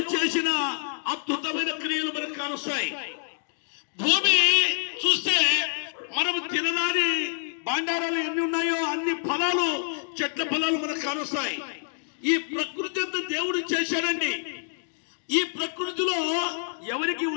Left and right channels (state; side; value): silent; right; digital silence